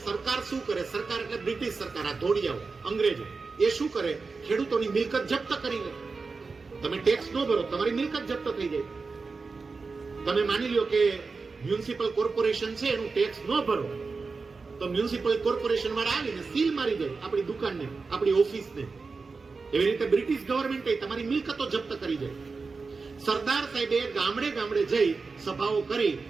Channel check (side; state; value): left; quieter; 4.4 dB